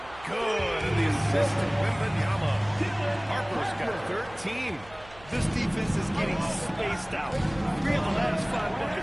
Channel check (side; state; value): right; noise; hum, 22 dB below the sound